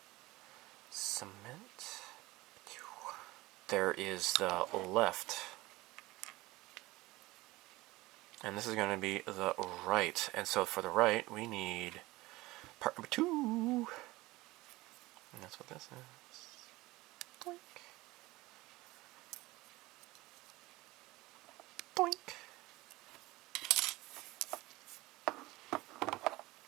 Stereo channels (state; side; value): quieter; left; 20.0 dB